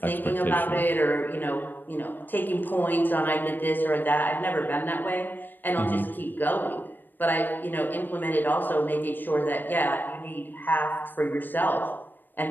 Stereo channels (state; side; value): late; right; 0.092 ms